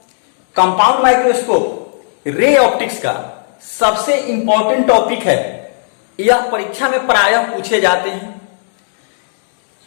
कंपाउंड माइक्रोस्कोप रे ऑप्टिक्स का सबसे इंपॉर्टेंट टॉपिक है। यह परीक्षा में प्रायः पूछे जाते हैं,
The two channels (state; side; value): silent; right; digital silence